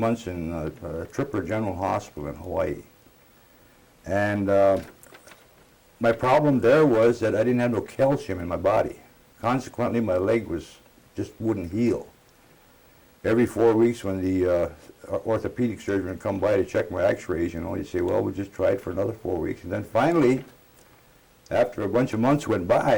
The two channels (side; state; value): both; identical; correlation 1.00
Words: in Tripper General Hospital in Hawaii. And my problem there was that I didn't have no calcium in my body. Consequently, my leg just wouldn't heal. Every 4 weeks when the orthopedic surgeon would come by to check my x-rays, you know, he'd say, well, we'll just try it for another 4 weeks. And then finally, after a bunch of months went